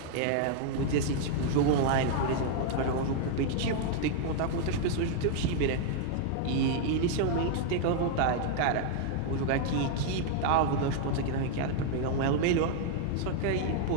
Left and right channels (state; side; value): different; both; correlation 0.00